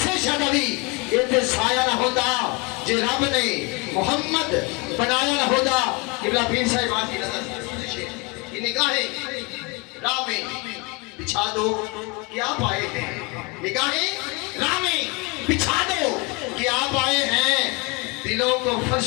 شہدانی ایتھے سایہ نہ ہوتا جے رب نے محمد بنایا نہ ہوتا قبلہ پیر صاحبان کی نظر یہ نگاہیں راہ میں بچھا دو کہ آپ آئے ہیں نگاہیں راہ میں بچھا دو کہ آپ آئے ہیں دلوں کو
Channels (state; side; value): quieter; right; 27.3 dB